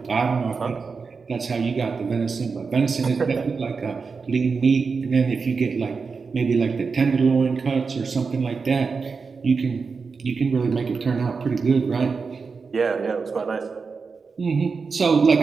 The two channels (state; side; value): quieter; left; 4.9 dB